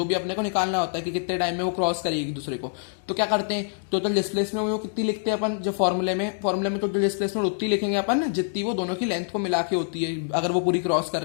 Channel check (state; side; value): silent; right; digital silence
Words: भी अपने को निकालना होता है कि कितने टाइम में वो क्रॉस करेगी एक दूसरे को, तो क्या करते हैं, टोटल डिस्प्लेसमेंट वो कितनी लिखते हैं अपन, जो फॉर्मूले में टोटल डिस्प्लेसमेंट उतनी लिखेंगे अपन जितनी वो दोनों की लेंथ को मिला के होती है, अगर वो पूरी क्रॉस कर